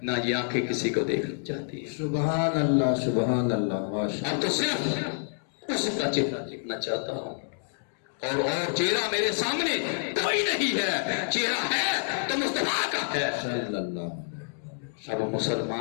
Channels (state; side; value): silent; right; digital silence